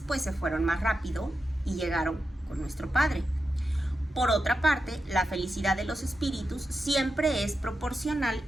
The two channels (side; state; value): both; normal; correlation 0.89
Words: pues se fueron más rápido y llegaron con nuestro Padre. Por otra parte, la felicidad de los espíritus siempre es proporcional